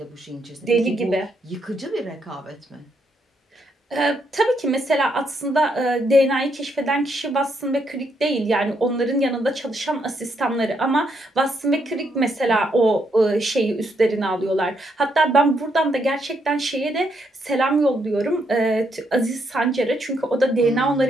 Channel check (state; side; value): normal; both; correlation 0.76